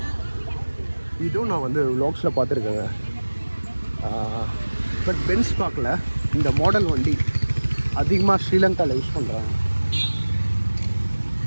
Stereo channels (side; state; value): both; inverted; correlation -1.00